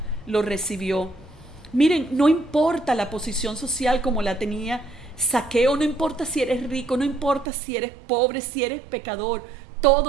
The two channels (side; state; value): left; drops out; at 7.5 s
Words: lo recibió. Miren, no importa la posición social como la tenía Zaqueo, no importa si eres rico, no importa si eres pobre, si eres pecador,